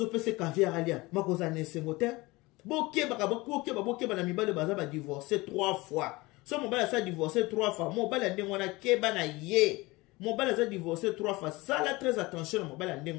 pese caviar alia makoza na sengo te bokeba na mibale baza ba divorcer 3 fois. So mobile sa divorcer 3 fois. Mobile ndenge wana keba na ye. mobali aza divorcé 3 fois sala très attention na mobali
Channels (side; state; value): right; quieter; 22.1 dB